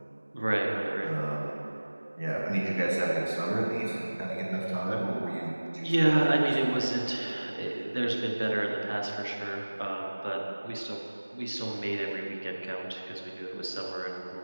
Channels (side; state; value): both; inverted; correlation -1.00